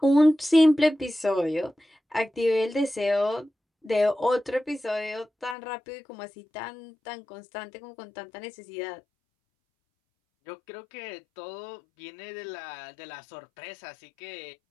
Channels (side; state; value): right; drops out; at 5.6 s